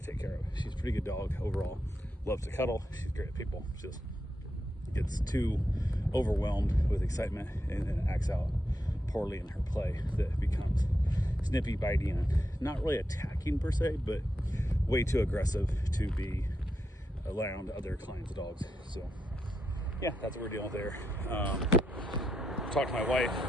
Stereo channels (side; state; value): both; normal; correlation 0.84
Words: take care of. She's a pretty good dog overall. Loves to cuddle. She's great at people. Just gets too overwhelmed with excitement and then acts out poorly in her play, that becomes snippy, bitey, and not really attacking per se, but way too aggressive to be around other clients' dogs. So yeah, that's what we're dealing with there. Talked to my wife.